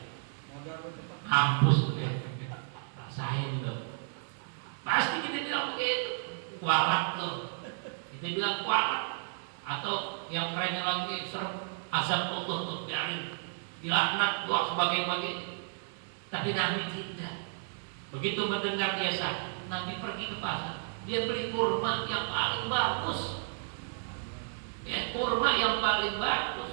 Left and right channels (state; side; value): silent; left; digital silence